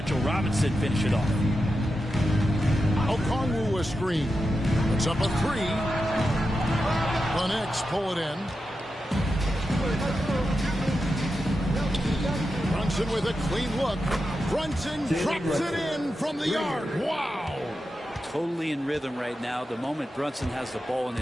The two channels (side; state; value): both; normal; correlation 0.89